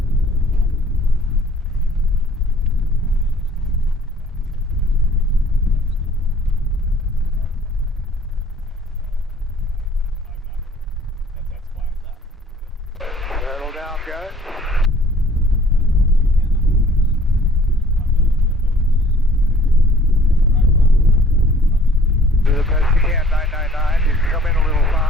Settle down, guys. Do the best you can, 999. You can come in a little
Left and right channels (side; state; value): both; normal; correlation 0.55